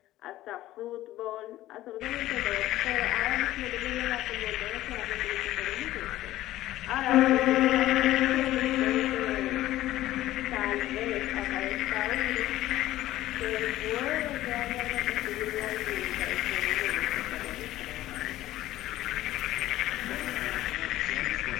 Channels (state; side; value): quieter; right; 15.1 dB